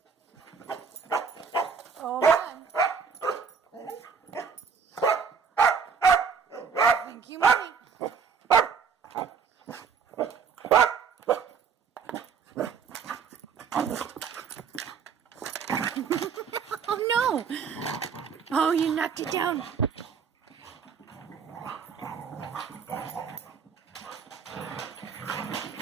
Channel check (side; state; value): left; quieter; 6.2 dB